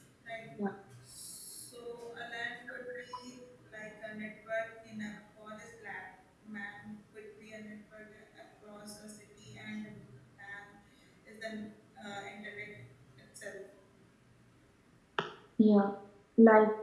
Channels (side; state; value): both; identical; correlation 1.00